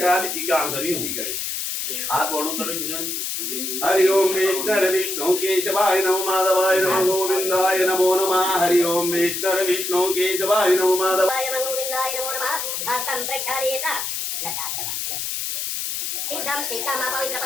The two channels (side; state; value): left; noise; hiss, 3 dB below the sound